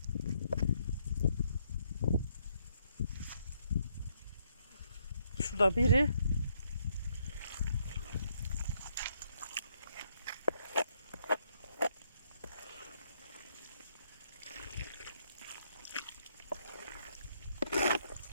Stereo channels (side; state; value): both; inverted; correlation -0.73